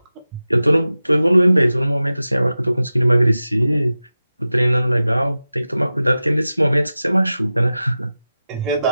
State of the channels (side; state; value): both; inverted; correlation -0.95